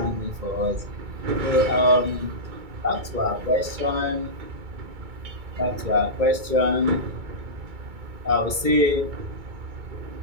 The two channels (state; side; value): late; left; 2.2 ms